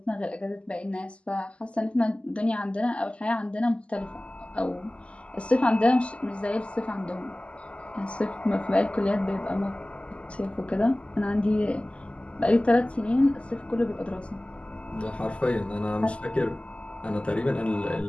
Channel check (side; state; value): right; late; 0.056 ms